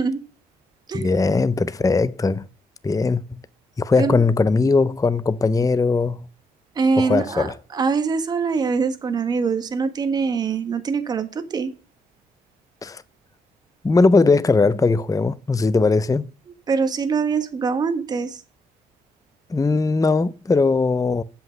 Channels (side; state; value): both; normal; correlation 0.80